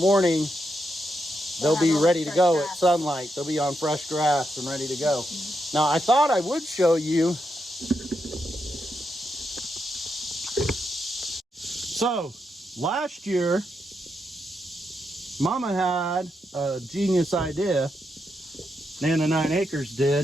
they'll be ready to go at sunlight. They'll be on fresh grass and ready to go. Now, I thought I would show you. So, last year, Mama had a genius idea. Nana 9 Acres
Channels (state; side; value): normal; both; correlation 0.83